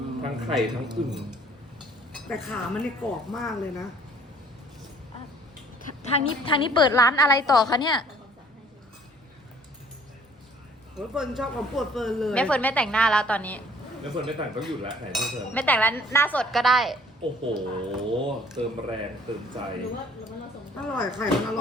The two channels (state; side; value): normal; both; correlation 0.56